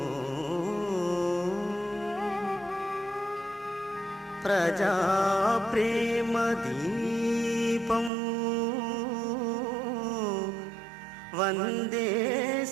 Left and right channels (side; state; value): left; drops out; at 8.1 s